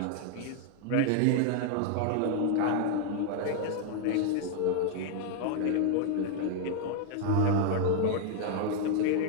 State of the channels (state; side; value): different; both; correlation 0.00